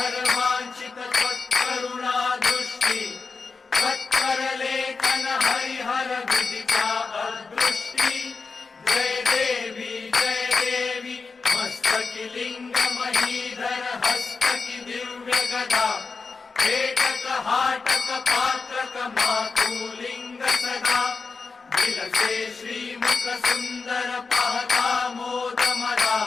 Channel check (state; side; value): quieter; right; 4.5 dB